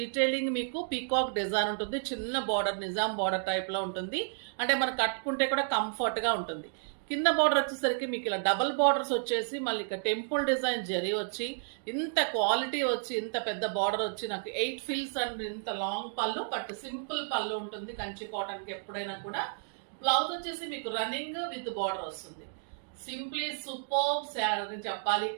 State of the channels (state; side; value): silent; left; digital silence